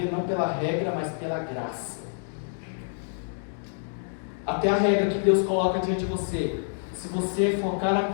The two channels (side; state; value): right; silent; 60 dB below the other